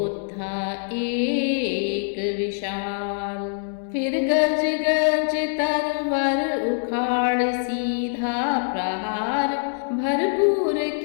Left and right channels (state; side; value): silent; right; 61 dB below the other